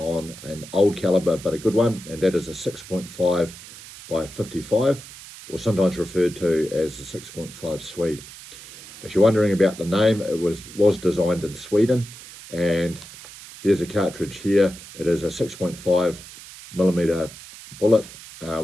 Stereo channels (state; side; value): noise; right; hiss, 16 dB below the sound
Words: an old caliber but a good one, and that is a 6.5 by 55, or sometimes referred to as the 6.5 Swede. If you're wondering about the name, it was designed in Sweden, and here's a cartridge here. It is a 6.5 millimeter bullet